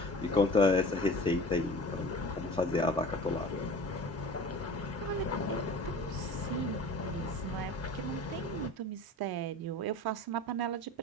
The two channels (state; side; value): normal; both; correlation 0.40